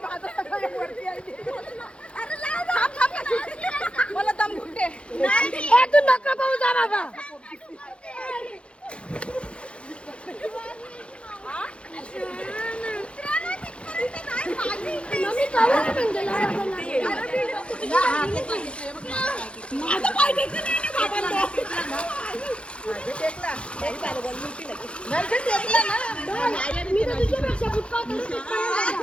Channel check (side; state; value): right; late; 0.058 ms